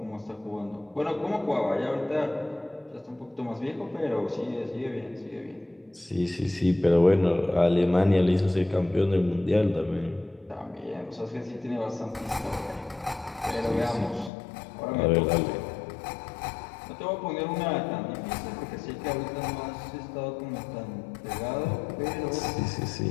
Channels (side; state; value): right; drops out; at 14.3 s